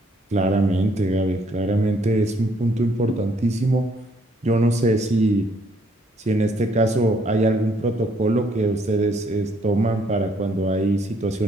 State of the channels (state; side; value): normal; both; correlation 0.67